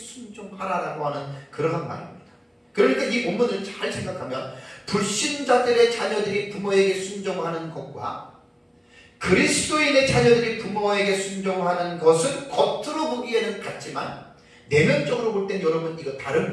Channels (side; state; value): both; identical; correlation 1.00